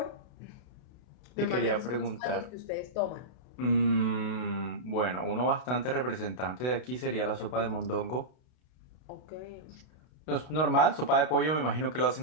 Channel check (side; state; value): right; late; 32 ms